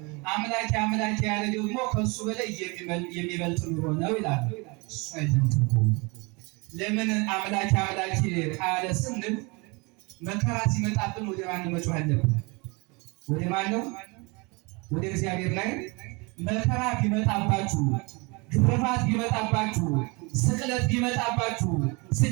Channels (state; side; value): quieter; left; 28.3 dB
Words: አምላኬ አምላኬ ያለ ደግሞ ከሱ በላይ የሚበልጥ ኑሮ ነው ይላሉ። እሱ አይደለም ትርጉሙ። ለምን አምላኬ አምላኬ ካለ ስንል መከራ ሲመጣብን ወደ ማን መጮህ አለብን? ወደ ማን ነው? ወደ እግዚአብሔር ላይ። መከራ ቢመጣባችሁ፣ ግርፋት ቢመጣባችሁ፣ ስቅለት ቢመጣባችሁ፣